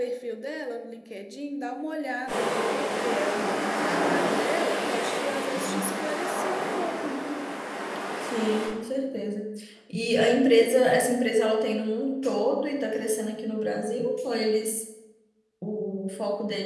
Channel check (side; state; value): both; identical; correlation 1.00